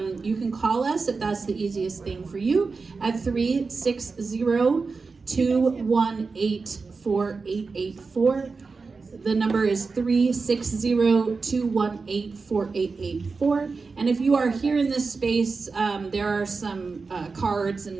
You can call us if that's the easiest thing for you at 360-218-4884. The number is 360-218-4884. And if you are here in this space, there are some cards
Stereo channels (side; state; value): left; quieter; 4.4 dB